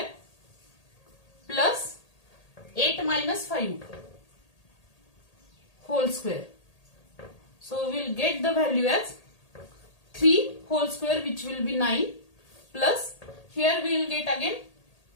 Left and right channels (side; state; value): right; late; 1.8 ms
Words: plus 8 minus 5 whole square. So we will get the value as 3 whole square, which will be 9, plus here we will get again